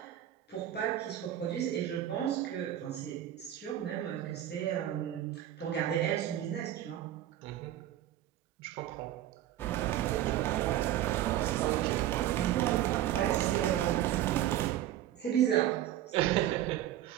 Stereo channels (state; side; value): quieter; left; 12.4 dB